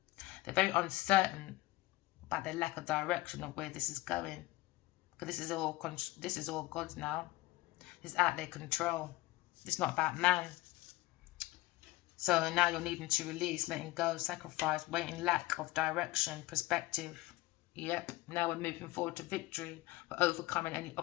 They're very uncertain about their lack of direction of where this is going. Because this is all God's now. It's out of their control. It's not about man. So now you're needing to release, letting go, sacrifice, waiting, lack of direction, perspective. Yep, now we're moving forward to victory. We're overcoming any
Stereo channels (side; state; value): right; quieter; 19.2 dB